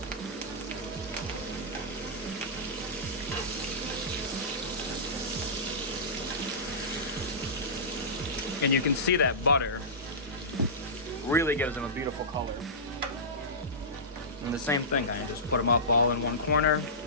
And you can see that butter really gives them a beautiful color. And the same thing, kind of just put them up all in one corner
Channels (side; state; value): both; normal; correlation -0.18